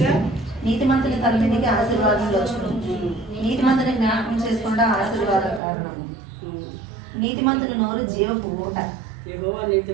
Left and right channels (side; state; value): left; drops out; at 5.6 s